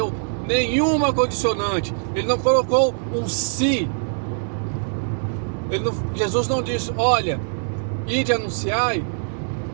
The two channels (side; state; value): left; silent; digital silence